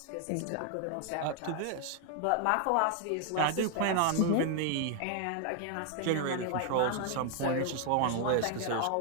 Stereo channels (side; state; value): both; different; correlation 0.00